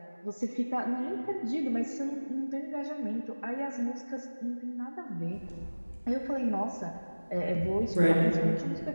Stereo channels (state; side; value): inverted; both; correlation -1.00